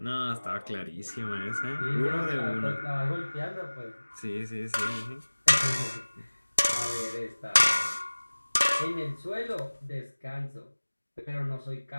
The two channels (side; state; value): both; inverted; correlation -1.00